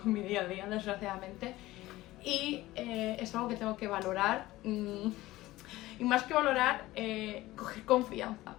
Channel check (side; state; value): right; quieter; 17.5 dB